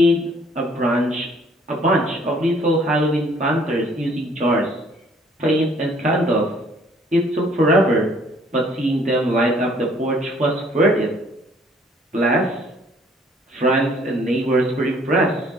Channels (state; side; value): normal; both; correlation 0.60